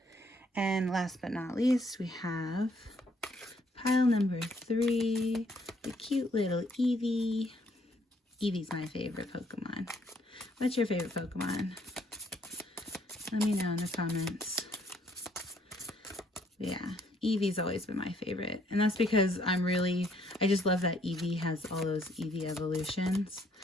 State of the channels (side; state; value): both; normal; correlation 0.67